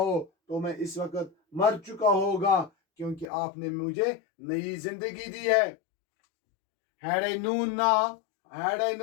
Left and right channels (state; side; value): drops out; right; at 3.2 s